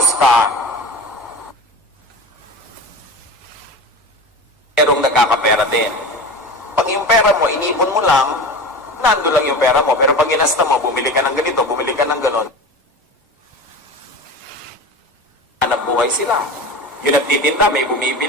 ka, merong nagkakapera din. Pag yung pera mo, inipon mo lang, nando lang yung pera mo. Pero pag ginasta mo, bumili ka ng ganito, bumili ka ng ganon. Hanap buhay sila. Yung nagtitinda, may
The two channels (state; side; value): normal; both; correlation 0.31